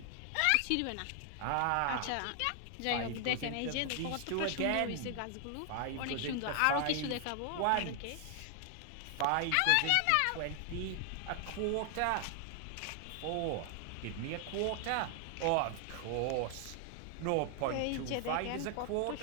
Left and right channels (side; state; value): both; different; correlation 0.00